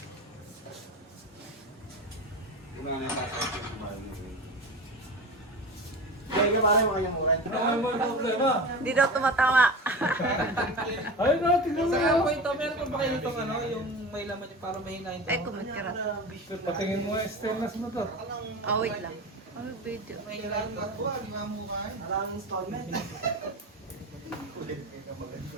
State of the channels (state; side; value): normal; both; correlation 0.29